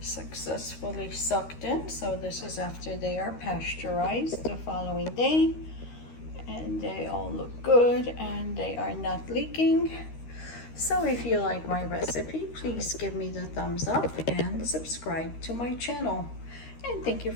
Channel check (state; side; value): late; right; 13 ms